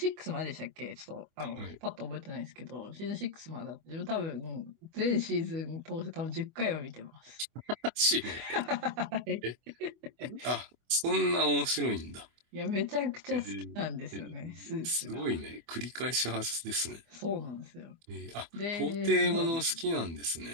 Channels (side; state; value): left; late; 24 ms